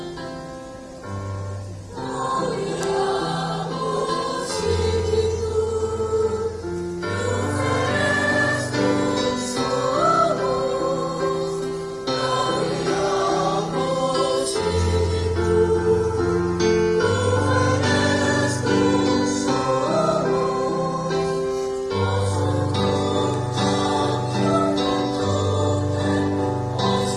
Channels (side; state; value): both; identical; correlation 1.00